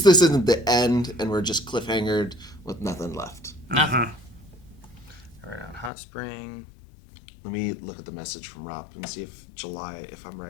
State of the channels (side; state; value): right; drops out; at 5.9 s